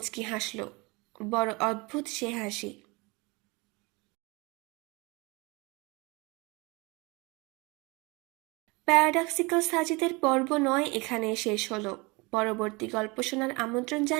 হাসল। বড় অদ্ভুত সে হাসি। প্যারাডক্সিক্যাল সাজিদের পর্ব 9 এখানে শেষ হলো। পরবর্তী গল্প শোনার আমন্ত্রণ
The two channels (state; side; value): quieter; left; 26.4 dB